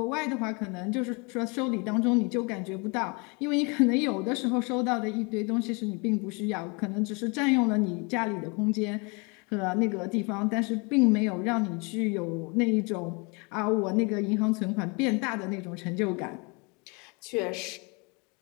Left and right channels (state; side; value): quieter; right; 31.1 dB